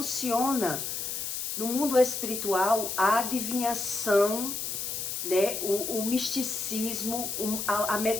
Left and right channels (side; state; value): left; noise; hiss, 4 dB below the sound